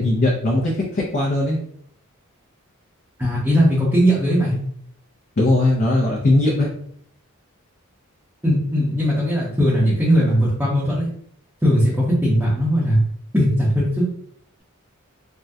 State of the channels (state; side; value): normal; both; correlation 0.83